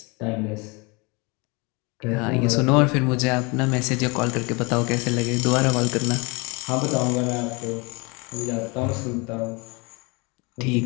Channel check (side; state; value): right; quieter; 28.4 dB